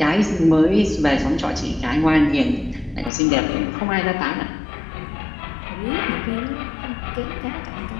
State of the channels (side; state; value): right; drops out; at 3.1 s